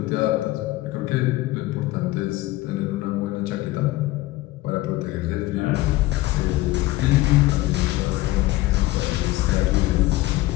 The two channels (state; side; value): quieter; right; 18.1 dB